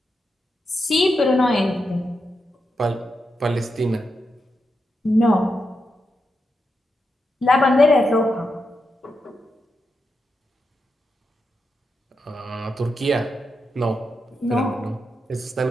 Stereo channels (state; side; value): normal; both; correlation 0.86